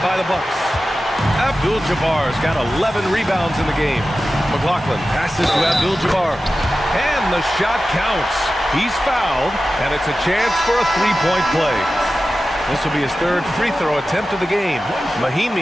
by the Bucks. Abdul-Jabbar's got 11 rebounds in the game. McLaughlin passes to Abdul-Jabbar. And the shot counts. He's fouled, and it's a chance for a 3-point play. This will be his 3rd free throw attempt of the game.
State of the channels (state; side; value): normal; both; correlation 0.94